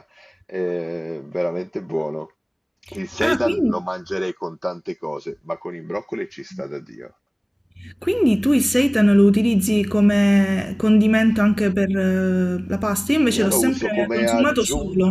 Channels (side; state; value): both; identical; correlation 1.00